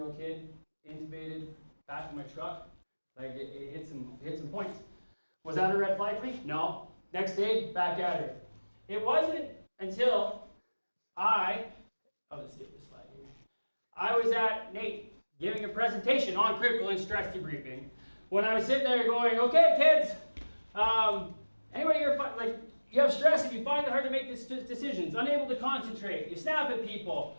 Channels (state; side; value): inverted; both; correlation -1.00